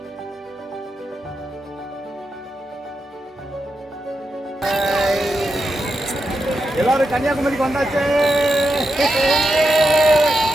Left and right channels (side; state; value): both; normal; correlation 0.87